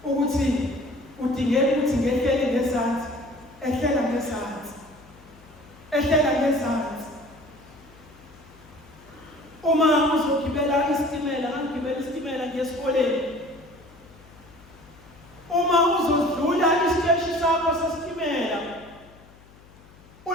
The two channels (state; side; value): noise; left; hum, 24 dB below the sound